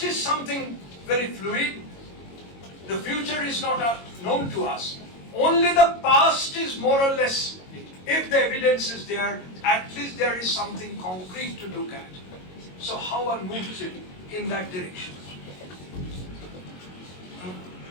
is something very fluid, the future is not known to us. Only the past is more or less, if the evidence is there, at least there is something concrete to look at. So how one moves it in that direction?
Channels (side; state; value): right; late; 22 ms